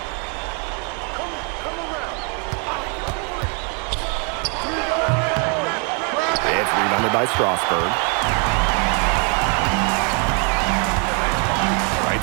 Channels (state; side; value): quieter; left; 37.5 dB